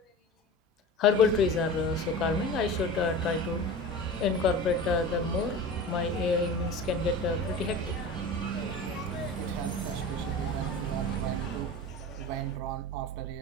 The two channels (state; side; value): normal; both; correlation 0.33